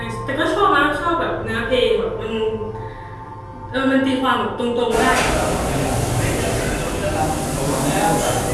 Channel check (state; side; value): identical; both; correlation 1.00